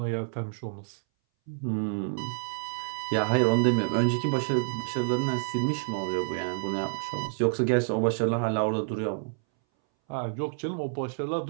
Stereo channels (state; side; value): silent; left; 59 dB below the other